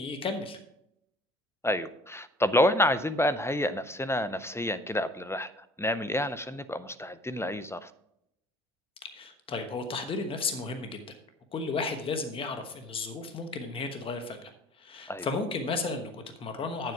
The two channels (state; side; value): normal; both; correlation 0.51